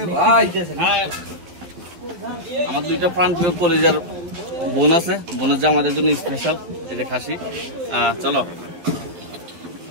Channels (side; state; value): left; late; 12 ms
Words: ভাই আমার দুইটা প্রাণপ্রিয় কলেজের বোন আছে, বোনের যে আমাদের জন্য স্পেশাল এই যে খাসি। চলো